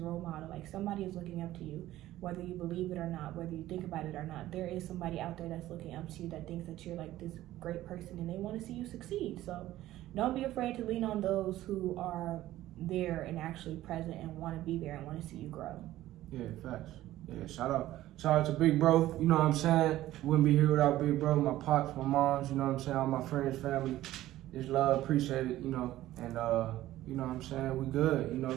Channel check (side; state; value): left; quieter; 14.8 dB